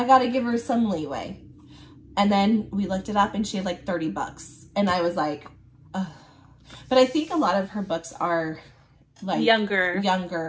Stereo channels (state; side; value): identical; both; correlation 1.00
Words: got to give her some leeway. And then we looked it up and she had like $30. And I was like, ugh. But I think a lot of her books are like